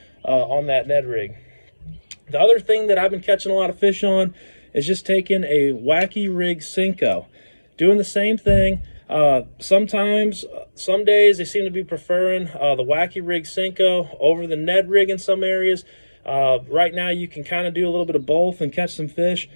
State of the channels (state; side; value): inverted; both; correlation -1.00